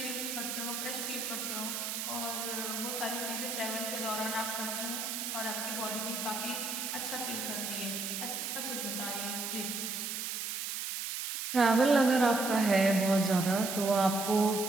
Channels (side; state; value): right; noise; hiss, 4 dB below the sound